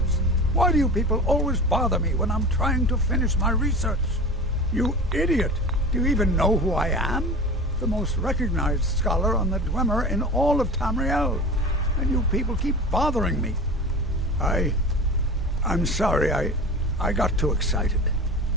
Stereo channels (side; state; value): both; normal; correlation 0.33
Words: Why do you people always bother me when I'm trying to finish my research? You idiot! Do you even know who I am? The most recognized scholar on the Dwemer in all of Tamriel. And you people keep bothering me. I'm sorry, I got too excited.